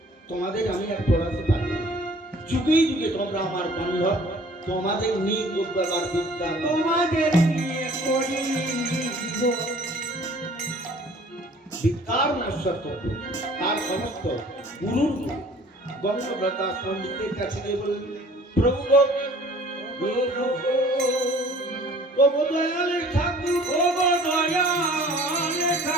তোমাদের আমি আর পড়াতে পারি না, যুগে যুগে তোমরা আমার বান্ধব, তোমাদের নিয়ে করবার বিদ্যা তোমাদের নিয়ে করি বিদ্যার নশ্বর তত্ত্ব। তার সমস্ত গুরুর গঙ্গব্রতা পণ্ডিতের কাছে গিয়ে বললেন, প্রভু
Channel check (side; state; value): both; normal; correlation 0.51